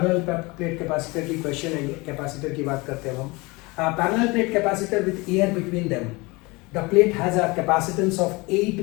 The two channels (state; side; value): quieter; right; 24.7 dB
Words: प्लेट कैपेसिटर की क्वेश्चन है ये. कैपेसिटर की बात करते हैं हम. Parallel plate capacitor with air between them. The plate has a capacitance of 8